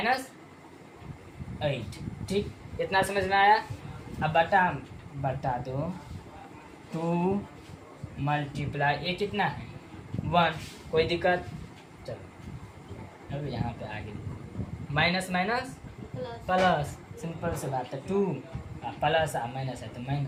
ठीक। इतना समझ में आया। अब बटा दो 2 मल्टीप्लाई ए कितना है 1, कोई दिक्कत, चलो अब यहाँ पे आगे माइनस प्लस, सिंपल से बात है, 2 प्लस माइनस है तो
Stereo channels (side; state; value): both; identical; correlation 1.00